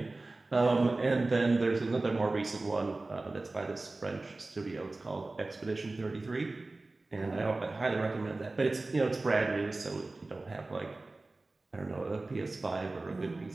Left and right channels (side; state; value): left; quieter; 3.2 dB